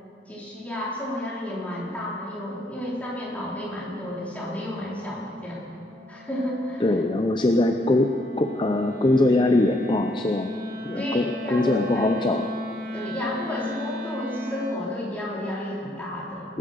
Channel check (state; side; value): normal; both; correlation 0.70